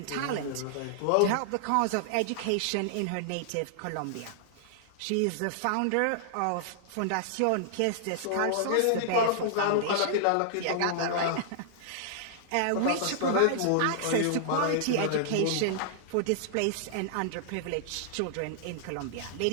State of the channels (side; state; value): both; different; correlation -0.01